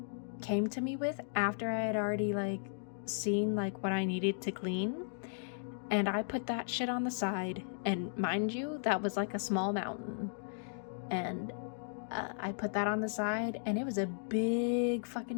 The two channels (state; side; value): silent; right; digital silence